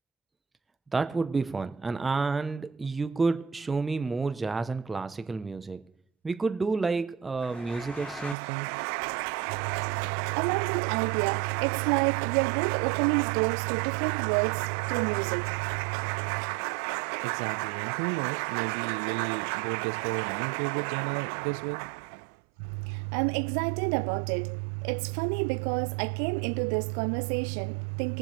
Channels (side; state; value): left; drops out; at 8.3 s